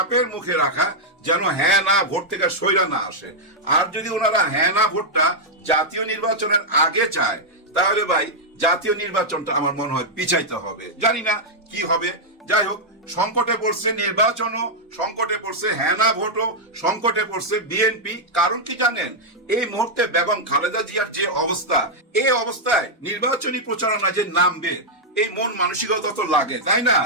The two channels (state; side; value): normal; both; correlation -0.05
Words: মুখে রাখা, যেন হ্যাঁ না ভোট থেকে সইরা না আসে। আর যদি ওনারা হ্যাঁ না ভোটটা জাতীয় নির্বাচনের আগে চায়, তাহলে ভাই জাতীয় নির্বাচনটা আমার মনে হয় পিছাইতে হবে। জানি না কি হবে। যাই হোক, সংকটে পড়ছে নির্বাচনও, সংকটে পড়ছে হ্যাঁ না ভোটও, সংকটে পড়ছে বিএনপি। কারণ কি জানেন? এই মুহূর্তে বেগম খালেদা জিয়ার যে অবস্থা, এই অবস্থায় নির্বাচনী প্রচারণা যে নামবে, এই মন মানসিকতা তো লাগে, তাই না?